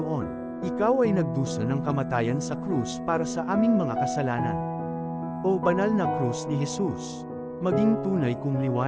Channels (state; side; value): identical; both; correlation 1.00